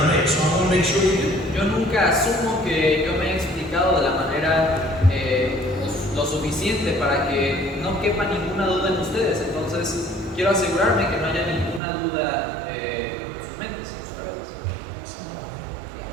to make. So I want to make sure we do. Yo nunca asumo que yo me he explicado de la manera lo suficiente para que no quepa ninguna duda en ustedes. Entonces, quiero asegurarme que no haya ninguna duda en sus mentes, en sus cabezas.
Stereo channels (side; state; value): left; drops out; at 11.8 s